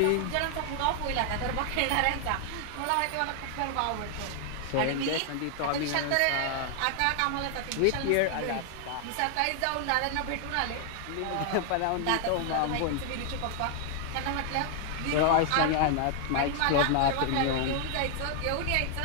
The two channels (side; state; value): both; different; correlation 0.00